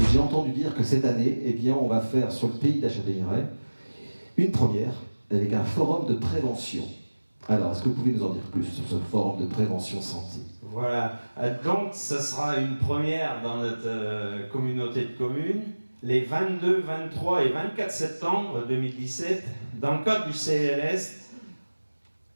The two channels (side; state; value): both; inverted; correlation -1.00